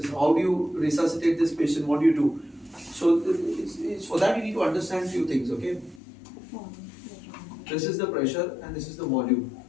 How do you resuscitate this patient? What do you do? So, it's for that you need to understand few things, okay? This is the pressure and this is the volume.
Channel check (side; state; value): right; drops out; at 6.0 s